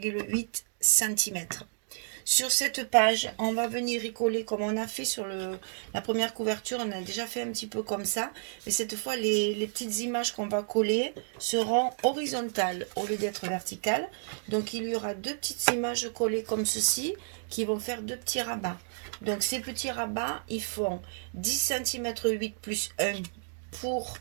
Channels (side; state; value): left; silent; digital silence